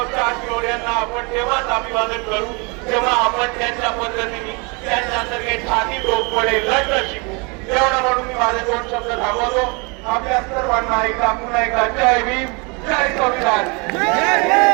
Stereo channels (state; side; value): quieter; left; 30.6 dB